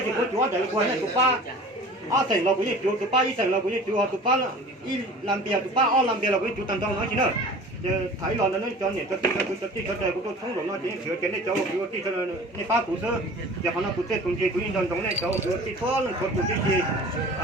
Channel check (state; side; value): normal; both; correlation 0.42